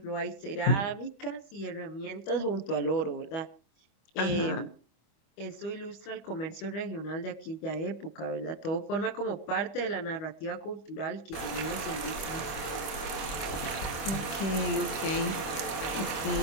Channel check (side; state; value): right; late; 25 ms